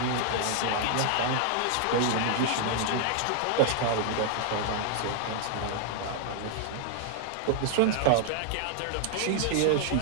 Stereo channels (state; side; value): different; both; correlation 0.00